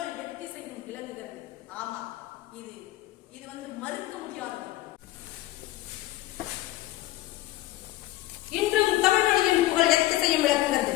எத்திசையும் விளங்குகிறது. ஆமா, இது வந்து மறுக்க முடியாதது. இன்றும் தமிழ் மொழியின் புகழ் எத்திசையும் விளங்குகிறது.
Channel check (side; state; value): right; quieter; 15.9 dB